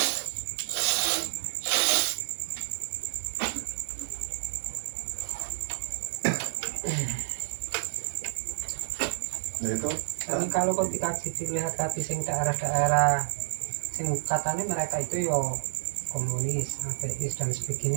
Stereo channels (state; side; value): silent; left; digital silence